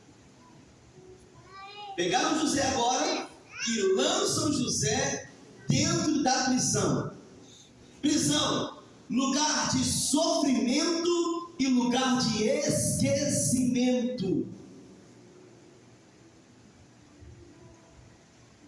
Pegaram José agora e lançam José dentro da prisão. Prisão, lugar de sofrimento e lugar de esquecimento.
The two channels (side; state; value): both; identical; correlation 1.00